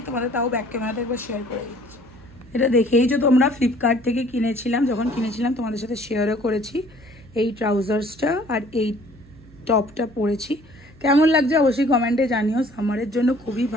তোমাদের তাও ব্যাক ক্যামেরাতে একবার শেয়ার করে দিচ্ছি। এটা দেখেই যে তোমরা ফ্লিপকার্ট থেকে কিনেছিলাম, যখন কিনেছিলাম তোমাদের সাথে শেয়ারও করেছি। এই ট্রাউজার্সটা আর এই টপটা পরেছি। কেমন লাগছে অবশ্যই কমেন্টে জানিও। সামারের জন্য খুবই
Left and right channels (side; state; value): right; noise; hum, 23 dB below the sound